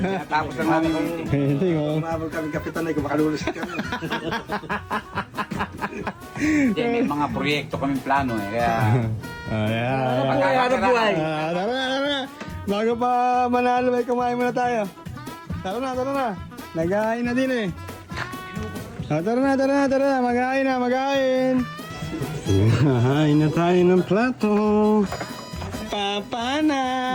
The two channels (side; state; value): both; identical; correlation 1.00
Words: lang namin yung meeting. Hindi ko. Umabot kami kapitan ay kumakalulos kami. Hindi, may mga proyekto kaming plano eh. Kaya... Hanap buhay. Tara na, tara na. Bago pa manalo, ay kumain muna tayo. Tara na, tara na. Nag-ahain na din eh. Tara na, tara na, tara na. Mag-ahain na, mag-ahain. Hahain na tayo ng plato. Papa na!